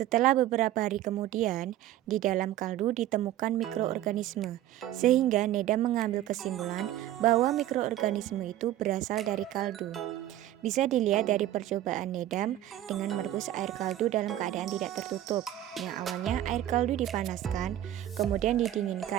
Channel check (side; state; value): left; quieter; 13.2 dB